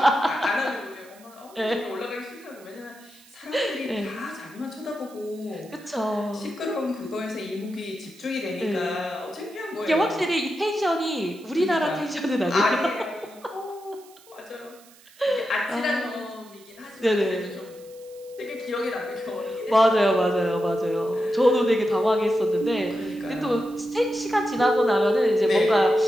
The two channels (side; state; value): right; noise; hiss, 25 dB below the sound